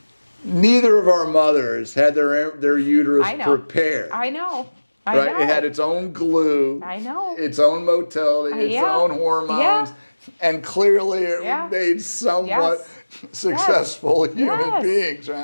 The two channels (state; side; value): inverted; both; correlation -1.00